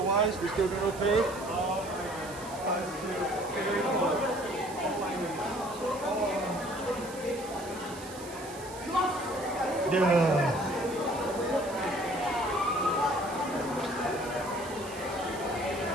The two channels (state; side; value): noise; right; hiss, 16 dB below the sound